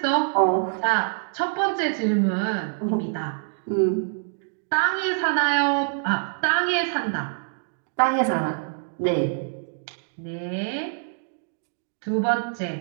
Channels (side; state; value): left; silent; digital silence